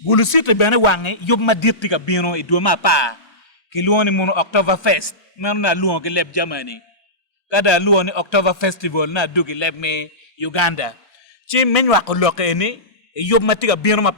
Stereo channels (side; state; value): both; normal; correlation -0.18